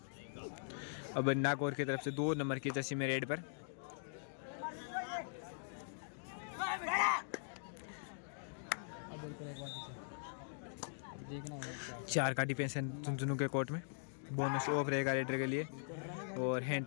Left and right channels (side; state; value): right; silent; digital silence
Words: अब नागौर की तरफ से 2 नंबर की जर्सी में रेड पर 4 का डिफेंस है झुंझुनू के कोर्ट में। बोनस ऑफ रहेगा रेडर के लिए और हैंड